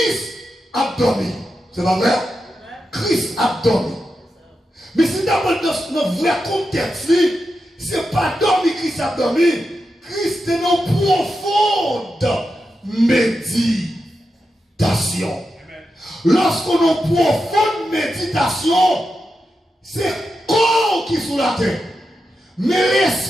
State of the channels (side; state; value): both; normal; correlation 0.88